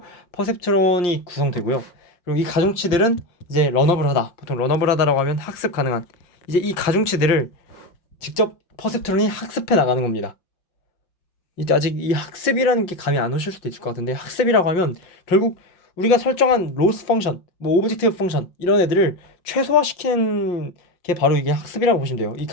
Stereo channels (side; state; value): right; late; 5.6 ms